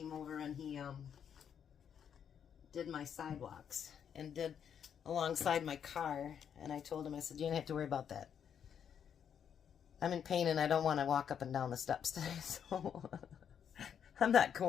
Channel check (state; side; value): quieter; right; 8.2 dB